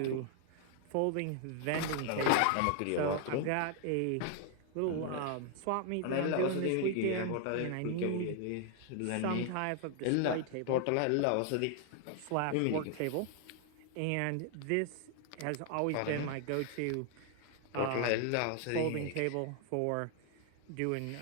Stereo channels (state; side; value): different; both; correlation 0.00